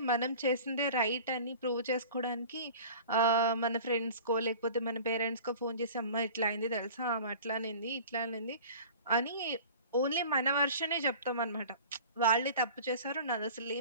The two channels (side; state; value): both; inverted; correlation -0.42